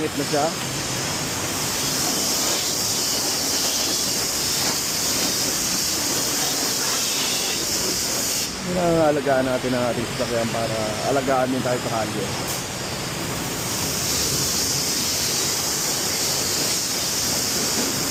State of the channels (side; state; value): both; identical; correlation 1.00